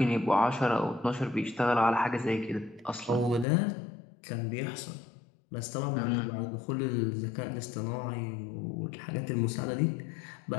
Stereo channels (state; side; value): drops out; right; at 3.5 s